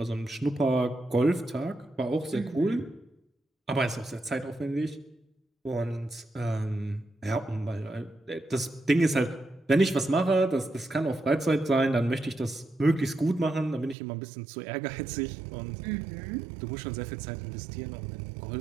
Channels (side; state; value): left; drops out; at 14.0 s